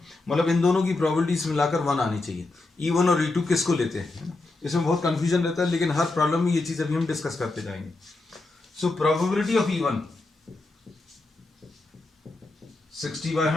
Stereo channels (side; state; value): right; quieter; 3.2 dB